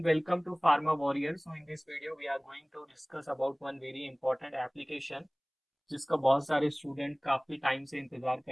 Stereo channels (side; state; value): both; identical; correlation 1.00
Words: welcome to Pharma Warrior. So in this video we are going to discuss about one very important application जिसका बहुत सारे student काफी time से इंतजार